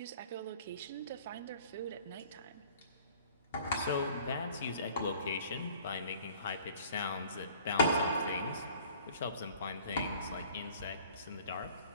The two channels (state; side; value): inverted; both; correlation -0.52